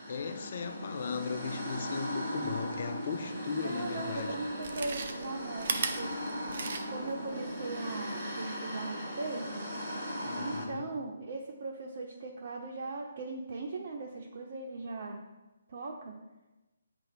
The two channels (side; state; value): both; inverted; correlation -0.74